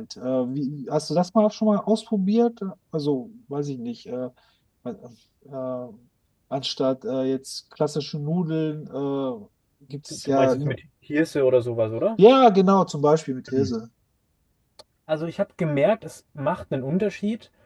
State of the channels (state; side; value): identical; both; correlation 1.00